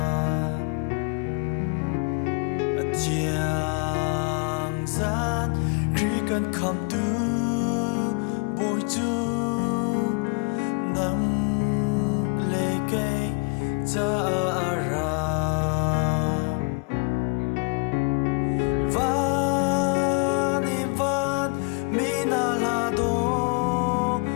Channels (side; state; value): right; quieter; 37.4 dB